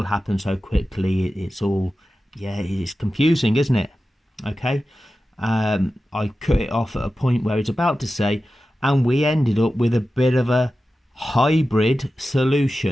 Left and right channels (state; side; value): normal; both; correlation 0.93